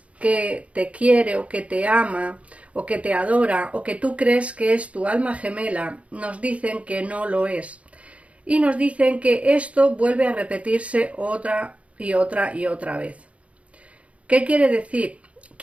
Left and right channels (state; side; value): late; left; 0.064 ms